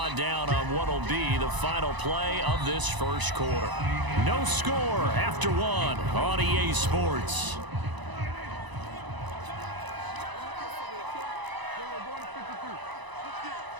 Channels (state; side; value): late; left; 1.0 ms